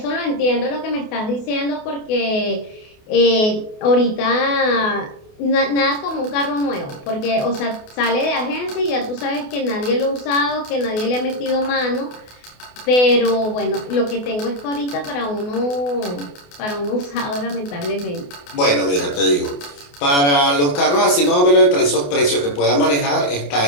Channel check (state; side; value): late; right; 28 ms